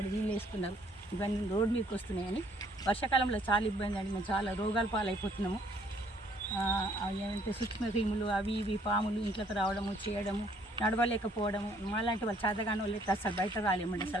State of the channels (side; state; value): both; normal; correlation 0.63